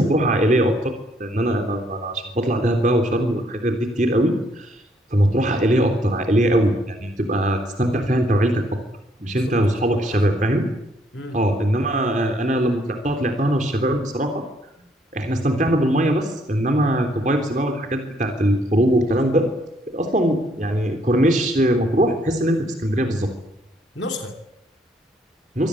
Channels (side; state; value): both; normal; correlation 0.68